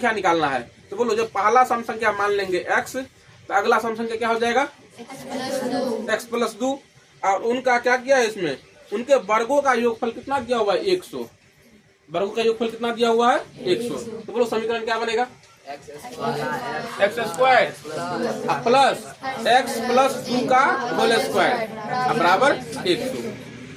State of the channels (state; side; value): identical; both; correlation 1.00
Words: निकालना है। तो बोलो, जब पहला सम संख्या मान लेंगे x, तो अगला सम संख्या क्या हो जाएगा? x plus 2। और उनका क्या किया है? इसमें उनके वर्गों का योगफल कितना दिया हुआ है? 100। वर्गों का योगफल कितना दिया हुआ है? 100। तो बोलो समीकरण क्या बनेगा? X square plus x plus 2 का होल स्क्वायर बराबर 100